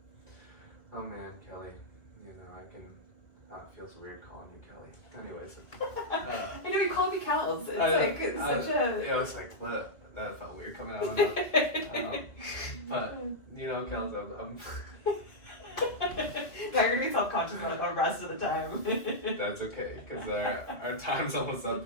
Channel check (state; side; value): late; right; 2.3 ms